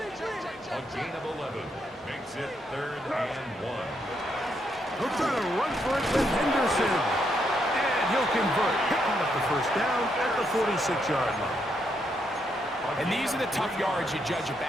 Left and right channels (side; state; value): both; normal; correlation 0.77